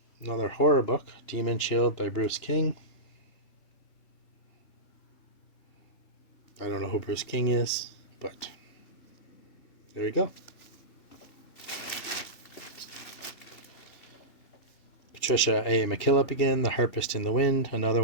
Another horror book, Demon Shield by Bruce King. I don't know who Bruce King is, but there we go. Patricia A. McKillop again, The Harpist in the Wind. Another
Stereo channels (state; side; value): late; right; 3.1 ms